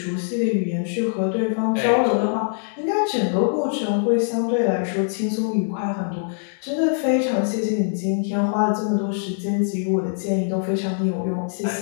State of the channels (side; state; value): right; silent; digital silence